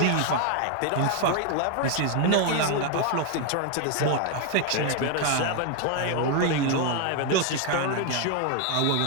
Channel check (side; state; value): both; different; correlation 0.01